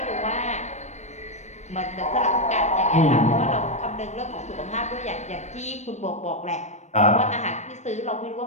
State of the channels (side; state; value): right; late; 0.34 ms